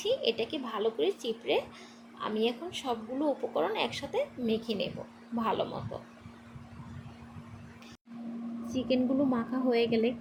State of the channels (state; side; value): identical; both; correlation 1.00